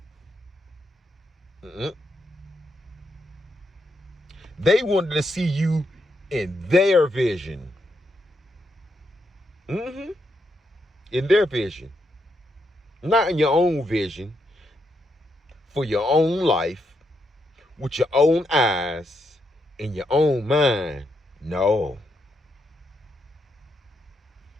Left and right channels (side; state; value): both; normal; correlation 0.80